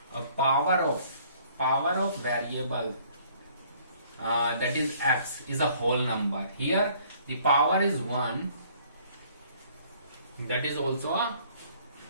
power of variable that is x is a whole number. Here the power is 1, that is also a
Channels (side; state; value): both; inverted; correlation -0.59